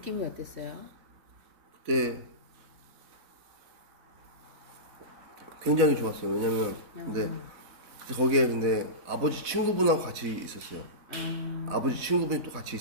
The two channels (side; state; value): left; late; 4.0 ms